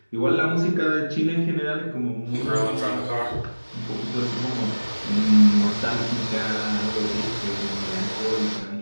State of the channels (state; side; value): inverted; both; correlation -1.00